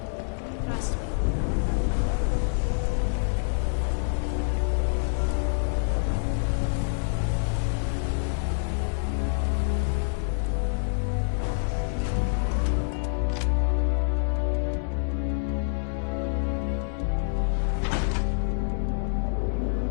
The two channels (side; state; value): right; silent; 60 dB below the other